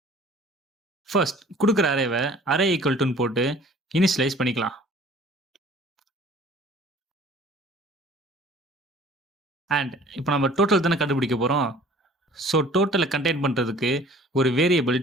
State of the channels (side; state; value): both; normal; correlation 0.51